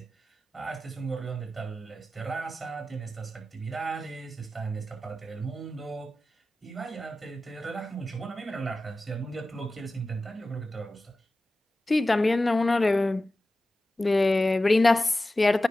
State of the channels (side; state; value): both; normal; correlation 0.95